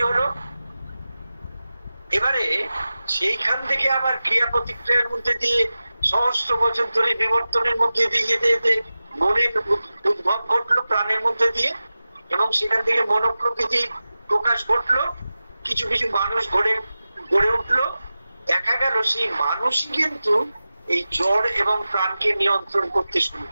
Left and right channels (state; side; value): inverted; both; correlation -0.95